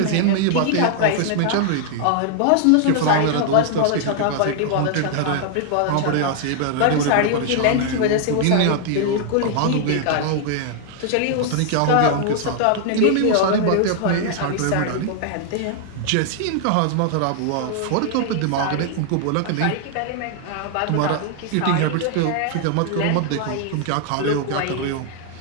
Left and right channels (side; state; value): both; different; correlation 0.00